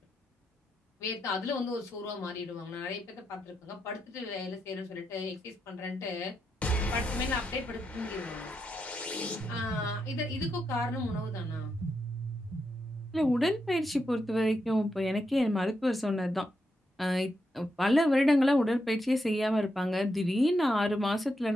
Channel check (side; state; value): both; normal; correlation 0.83